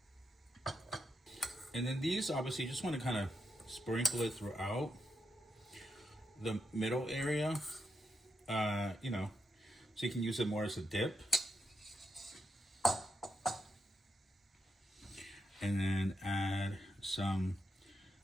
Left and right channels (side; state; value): both; normal; correlation 0.83